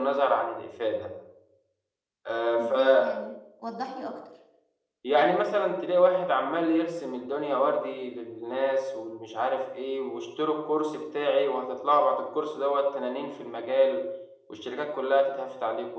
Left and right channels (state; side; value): identical; both; correlation 1.00